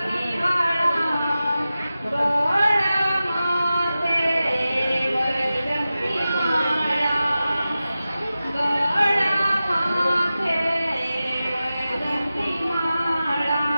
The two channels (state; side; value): inverted; both; correlation -0.94